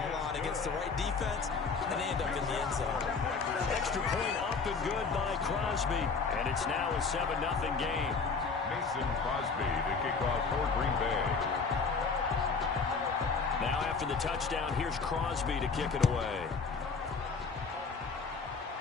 on against the right defense, and they end up in the end zone. Extra point up and good by Crosby. And it's now a 7-0 game. Mason Crosby, the kickoff for Green Bay. Now after the touchdown, here's Crosby to kick it away.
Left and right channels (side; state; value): right; quieter; 4.8 dB